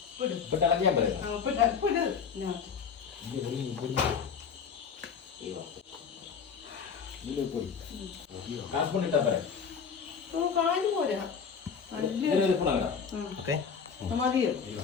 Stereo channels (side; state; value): right; quieter; 6.4 dB